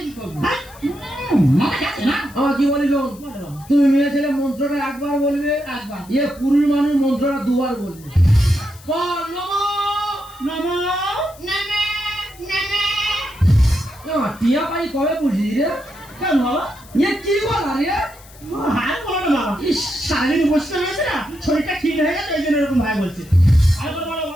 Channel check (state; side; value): noise; left; hiss, 23 dB below the sound